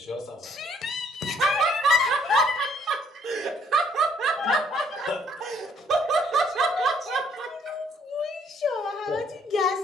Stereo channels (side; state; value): both; normal; correlation 0.65